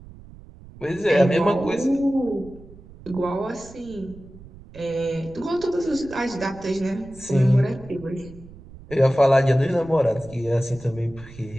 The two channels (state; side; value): noise; right; rumble, 19 dB below the sound